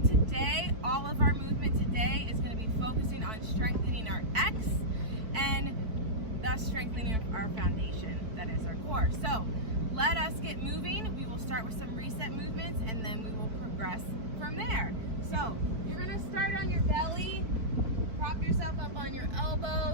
all of our movement today is going to be focusing on strengthening our X and thus strengthening our foundation, that is our core. So let us get moving. We will start with some reset movements and then we will progress from there. So you're going to start on your belly, prop yourself up on your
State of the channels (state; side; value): late; left; 4.5 ms